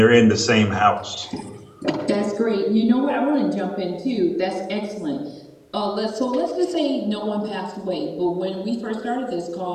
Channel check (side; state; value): both; identical; correlation 1.00